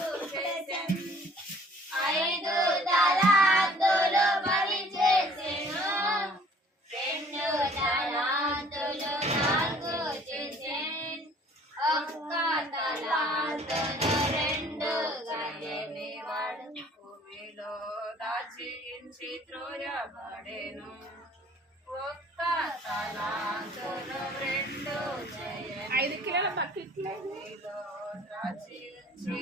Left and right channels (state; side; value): normal; both; correlation 0.54